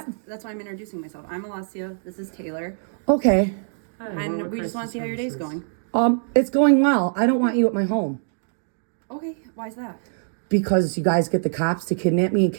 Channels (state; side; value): silent; left; digital silence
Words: That's why I'm introducing myself. I'm Alessia. This is Taylor. Okay. Hi, And we just want to see how your day's going. It's going well. I don't want you at my home Okay, why is that? because you guys get the cops to kidnap me and